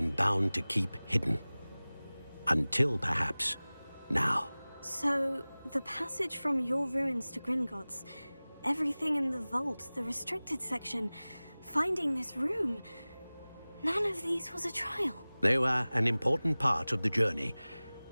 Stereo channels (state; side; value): inverted; both; correlation -0.99